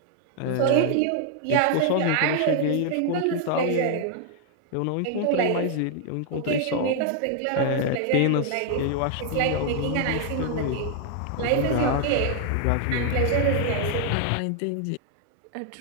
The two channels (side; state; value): both; different; correlation 0.00